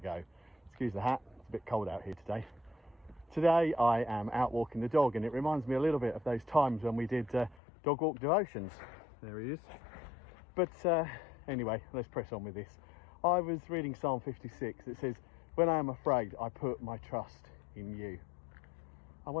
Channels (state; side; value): drops out; right; at 7.6 s